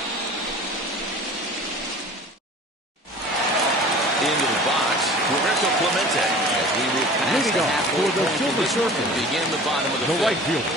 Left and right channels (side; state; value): both; normal; correlation 0.43